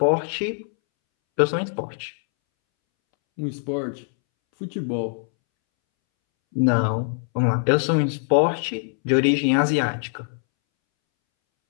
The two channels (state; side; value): silent; right; 64 dB below the other